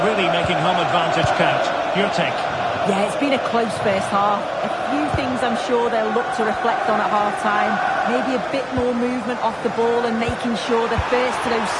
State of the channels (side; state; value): both; identical; correlation 1.00